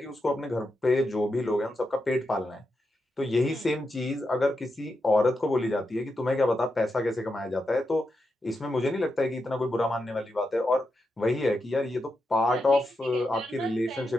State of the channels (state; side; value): normal; both; correlation 0.86